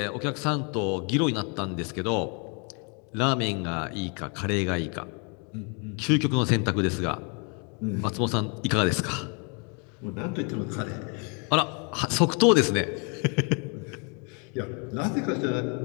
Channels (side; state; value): right; quieter; 35.9 dB